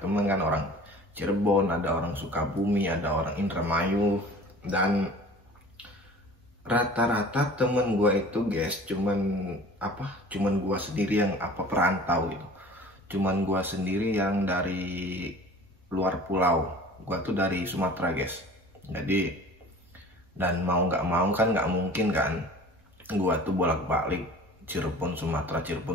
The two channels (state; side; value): normal; both; correlation 0.44